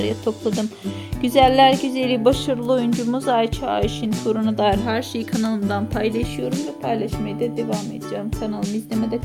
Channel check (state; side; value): identical; both; correlation 1.00